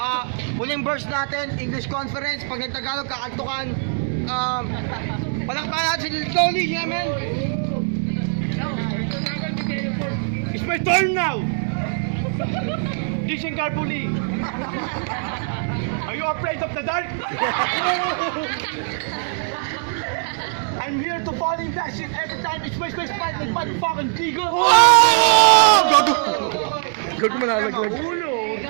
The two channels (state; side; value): silent; left; digital silence